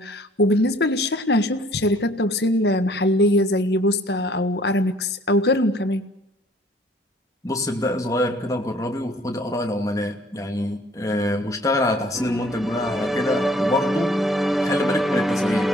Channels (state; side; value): normal; both; correlation 0.57